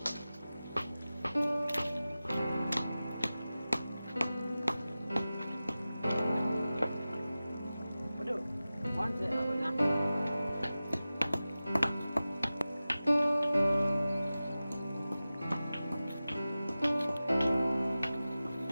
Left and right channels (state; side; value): inverted; both; correlation -0.96